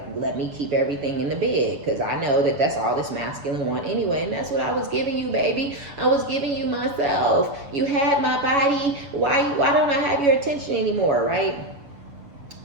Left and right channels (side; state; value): left; late; 7.1 ms